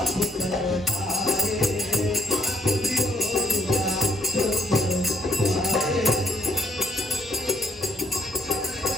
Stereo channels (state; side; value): normal; both; correlation 0.72